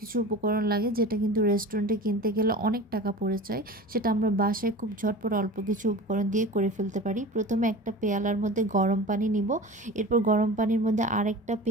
উপকরণ লাগে, যেটা কিন্তু রেস্টুরেন্টে কিনতে গেলে অনেক টাকা পড়ে যায়। সেটা আমরা বাসায় খুব ঝটপট অল্প কিছু উপকরণ দিয়ে করে ফেলতে পারি। প্রথমে একটা পেয়ালার মধ্যে গরম পানি নিব। এরপর গরম পানির মধ্যে আরেকটা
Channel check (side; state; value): both; normal; correlation 0.35